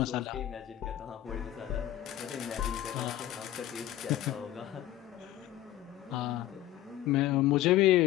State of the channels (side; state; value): right; quieter; 13.6 dB